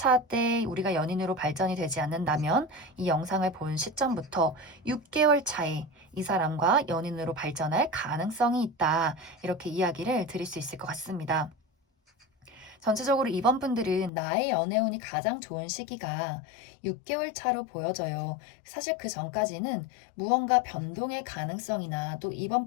때 우리가 연인으로 발전이 되지 않는다면 이 영상을 본 시점부터 6개월 차에 이 사람과 연인으로 발전할 가능성이 있다. 이렇게 이야기를 드릴 수 있을 것 같습니다. 전체적으로 이번 분들은 나의 연애운이 가장 좋은 시기가 6개월 차로 보여져요. 사실 그 전까지는 무언가 변동의 가능성이나 또 이번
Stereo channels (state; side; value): drops out; right; at 14.1 s